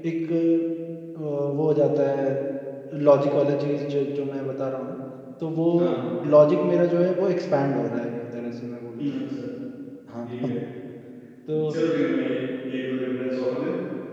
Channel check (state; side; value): identical; both; correlation 1.00